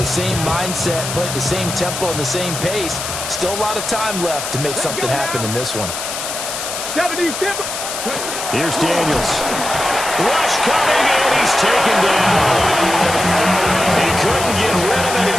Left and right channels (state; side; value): noise; left; hiss, 6 dB below the sound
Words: same mindset, play at the same tempo and the same pace. Still a lot of time left to make something happen in this one. Here's Daniels. Rush coming, and he's taken down. He couldn't get rid of it.